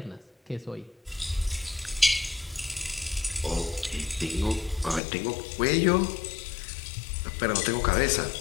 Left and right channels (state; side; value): drops out; right; at 5.0 s